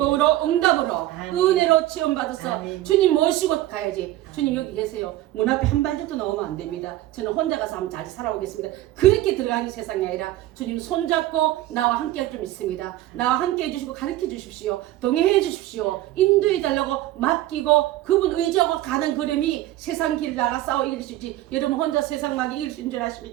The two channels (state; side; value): quieter; left; 15.2 dB